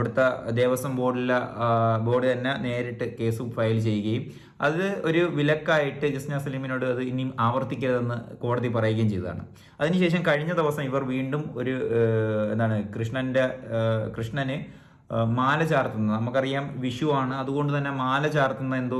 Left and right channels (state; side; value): identical; both; correlation 1.00